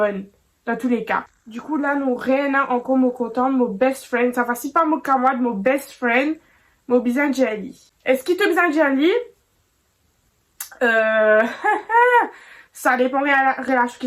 dans tous les cas. Du coup là nous rien encore me content mon best friend, ça va si pas mon camarade, mon best friend, mon besoin jelly. Est-ce qu'il te besoin jelly? Ça dépend de la relation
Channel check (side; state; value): both; identical; correlation 1.00